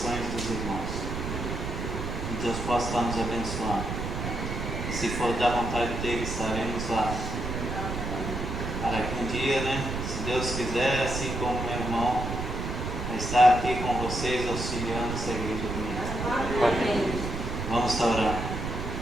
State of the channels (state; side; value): noise; right; rumble, 4 dB below the sound